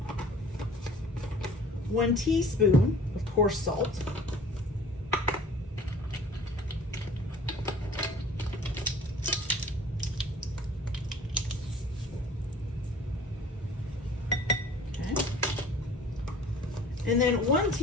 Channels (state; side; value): normal; both; correlation 0.48